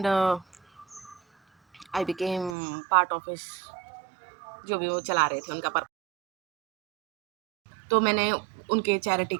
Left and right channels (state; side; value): drops out; left; at 2.6 s